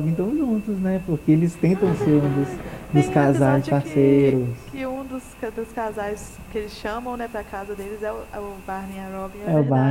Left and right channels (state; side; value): identical; both; correlation 1.00